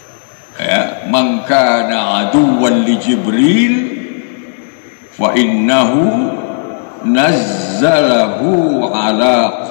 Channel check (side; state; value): right; silent; digital silence